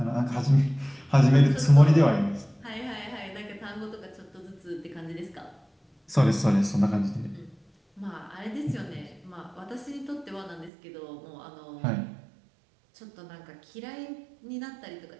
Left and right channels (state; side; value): drops out; left; at 10.7 s